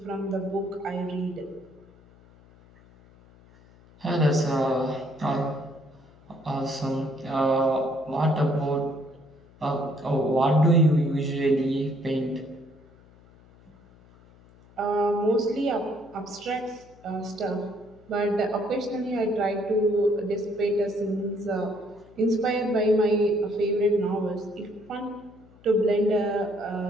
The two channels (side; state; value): left; noise; hum, 26 dB below the sound